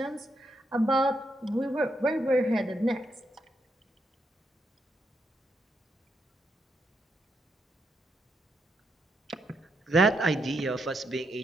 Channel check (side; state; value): both; normal; correlation 0.80